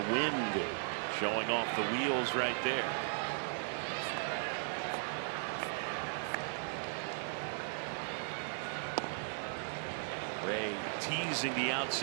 wind showing off the wheels right there. Ray teasing the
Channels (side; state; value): left; silent; digital silence